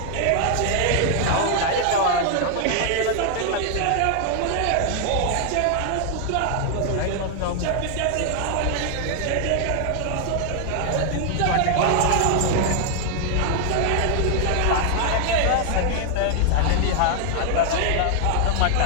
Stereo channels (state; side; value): different; both; correlation 0.00